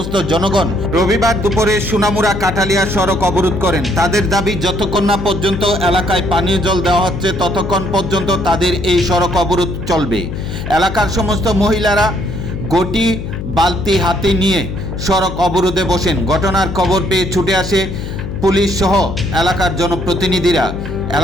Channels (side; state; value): left; noise; hum, 7 dB below the sound